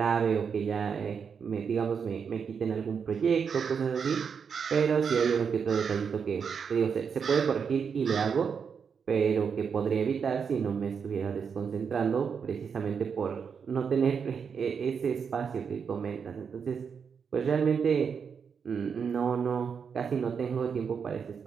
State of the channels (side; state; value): left; quieter; 6.4 dB